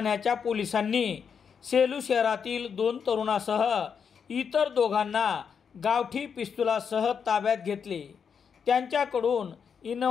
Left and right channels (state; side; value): quieter; right; 6.7 dB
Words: पोलिसांनी सेलू शहरातील 2 तरुणासह इतर दोघांना गावठी पिस्तुलासह ताब्यात घेतले। त्यांच्याकडून